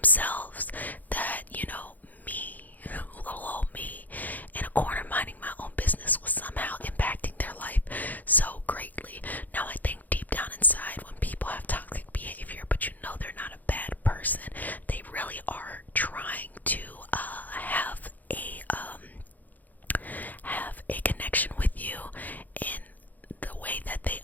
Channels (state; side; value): late; right; 0.082 ms